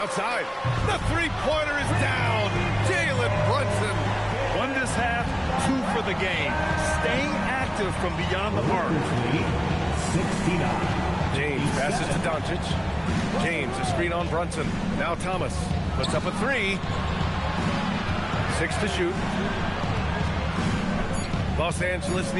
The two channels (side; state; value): both; identical; correlation 1.00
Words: The three-pointer is down. Jalen Brunson. Won this half, 2 for the game. Staying active from beyond the arc. 69. James passes to Doncic. James, a screen on Brunson. Now Thomas puts up a 3. 6 to shoot. Los Angeles